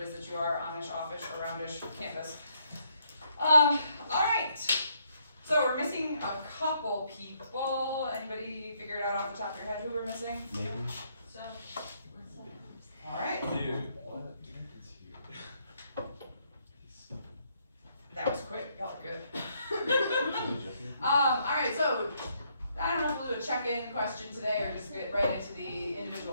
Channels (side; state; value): both; inverted; correlation -0.73